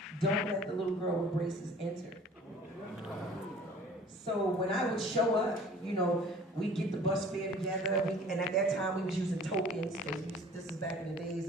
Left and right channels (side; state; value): both; normal; correlation 0.49